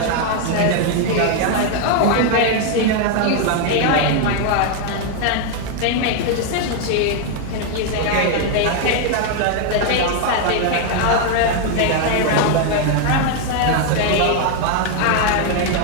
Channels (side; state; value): both; different; correlation 0.00